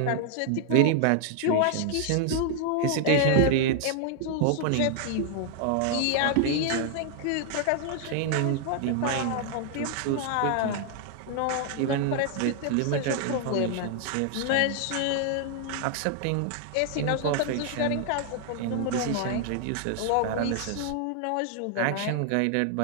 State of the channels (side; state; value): both; different; correlation 0.00